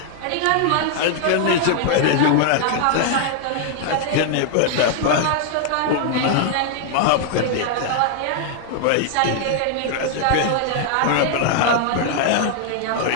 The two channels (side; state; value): both; different; correlation 0.00